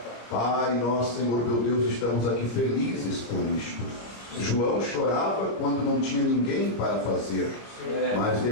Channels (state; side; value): late; right; 25 ms